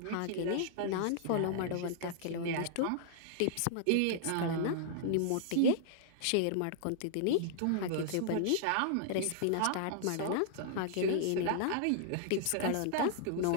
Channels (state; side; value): different; both; correlation -0.01